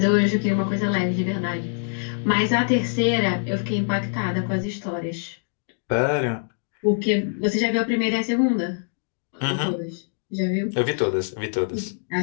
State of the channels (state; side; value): silent; right; digital silence